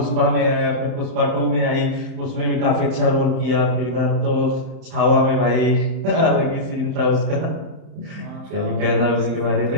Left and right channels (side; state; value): left; late; 31 ms